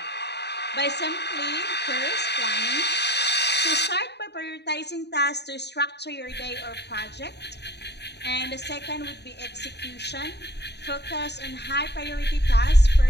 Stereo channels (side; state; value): right; late; 0.49 ms